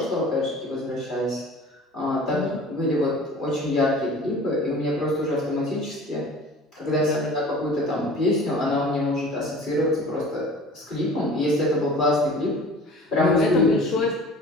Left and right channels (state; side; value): normal; both; correlation 0.43